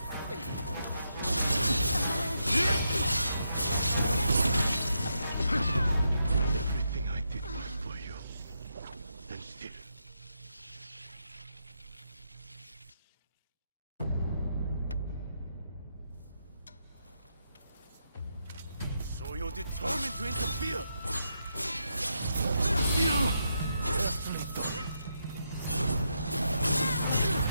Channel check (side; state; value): both; inverted; correlation -0.82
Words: Everything I did was for you. And still. So you're determined to interfere? Carefully done.